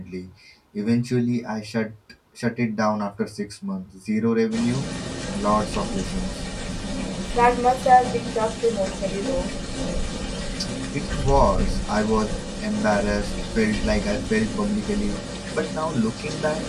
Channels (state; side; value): identical; both; correlation 1.00